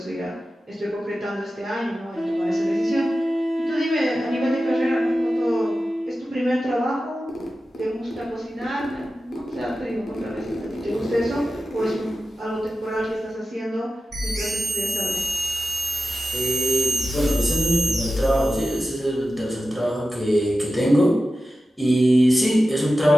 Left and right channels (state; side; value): normal; both; correlation 0.93